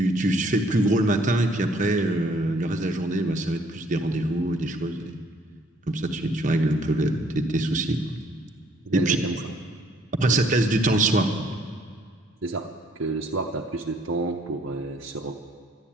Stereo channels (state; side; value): normal; both; correlation 0.63